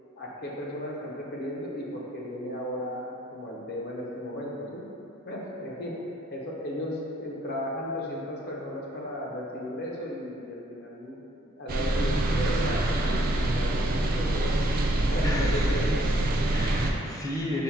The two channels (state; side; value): normal; both; correlation 0.67